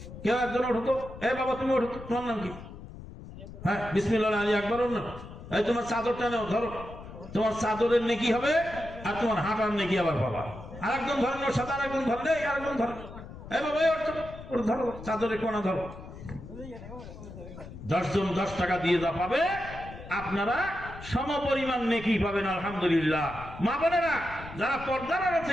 কেউ একজন ওঠো তো। বাবা তুমি ওঠো, তোমার নাম কি? হ্যাঁ, বিসমিল্লাহ আলী আকবর। এই তোমার চাদরটা নাও, ধরো। তোমার চাদরের নেকি হবে আর তোমার হাঁটার নেকি আবার পাবা। আরেকজন ধরেন, ওর সাথে আরেকজন ধরেন, আরেকজন ধরেন। বাবা ওর ধরো, চাদরের কোনা ধরো। 10 জন 10 টাকা দিয়ে যা পাবে, আপনারা সমপরিমাণ নেকি পাবেন। আলহামদুলিল্লাহ। মা বোনেরা যারা পর্দার আড়াল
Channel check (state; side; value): noise; left; rumble, 14 dB below the sound